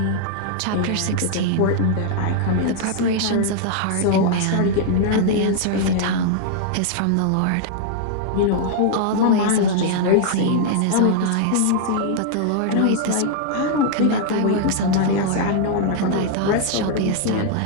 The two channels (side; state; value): both; different; correlation -0.01